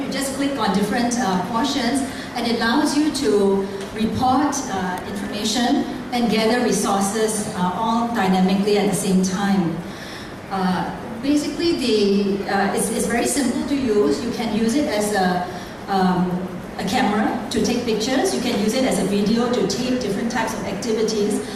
just click on different portions, and it allows you to report information and gather resources all dynamically at the same time. Basically, it's very simple to use. You can use it as a camera to take pictures. You can use it as a video to tape different types of activities.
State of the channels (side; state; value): both; identical; correlation 1.00